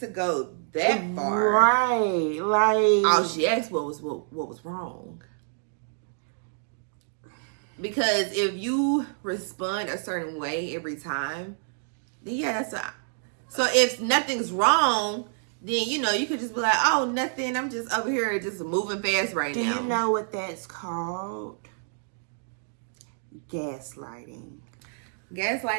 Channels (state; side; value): silent; left; digital silence